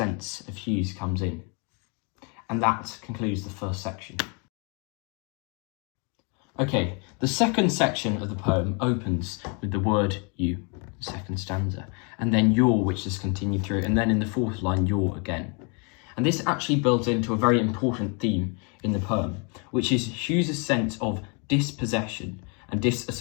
of Hughes comes in. And that concludes the first section. Okay, the second section of the poem opens with the word you, the second stanza, and then your, which is continued through, and then in the fourth line, your again. And this actually builds into a very important theme in the poem, which is Hughes' sense of dispossession and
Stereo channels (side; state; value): right; quieter; 34.8 dB